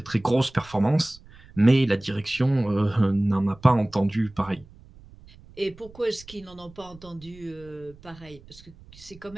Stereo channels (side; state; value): right; noise; rumble, 23 dB below the sound